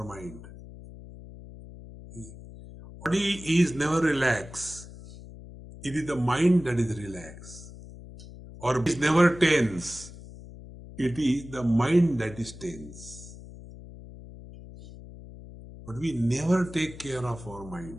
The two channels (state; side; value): noise; left; hum, 16 dB below the sound